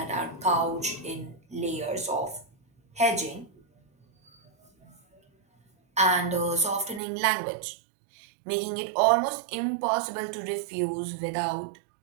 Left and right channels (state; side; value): drops out; left; at 7.0 s